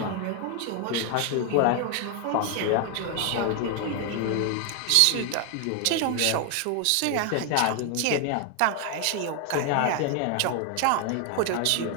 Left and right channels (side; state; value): both; different; correlation 0.01